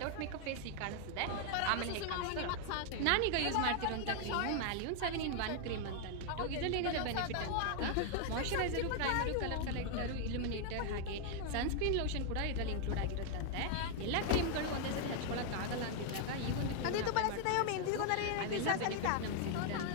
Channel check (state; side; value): different; both; correlation 0.00